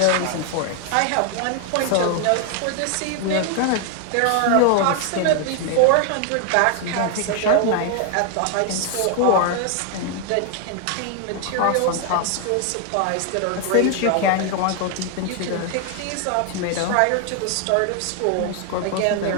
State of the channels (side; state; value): both; different; correlation 0.00